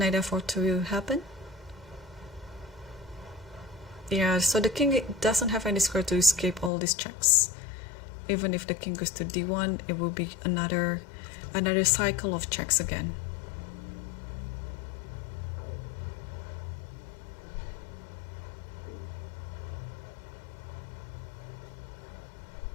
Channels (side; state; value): right; drops out; at 6.7 s